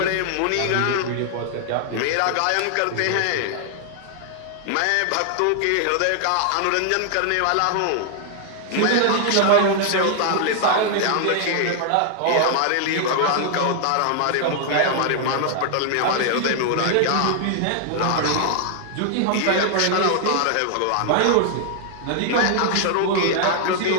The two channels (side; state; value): both; different; correlation 0.00